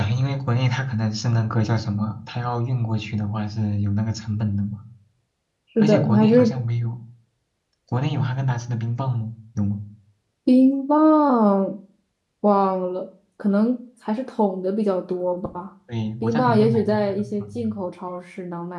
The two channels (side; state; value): both; identical; correlation 1.00